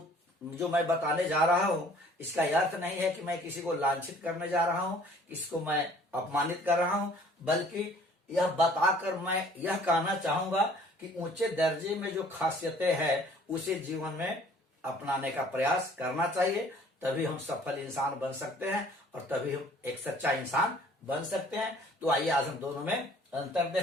जो मैं बताने जा रहा हूँ, इसका अर्थ नहीं है कि मैं किसी को लांछित करने जा रहा हूँ, किसको मैं अपमानित कर रहा हूँ, बल्कि यह बताकर मैं यह कहना चाहूंगा कि ऊंचे दर्जे में जो खासियतें हैं उसे जीवन में अपनाने का प्रयास करना चाहिए। तभी हम सफल इंसान बन सकते हैं और तभी हम एक सच्चा इंसान बन सकते हैं। तो आइए आज हम दोनों में अंतर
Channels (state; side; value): normal; both; correlation 0.55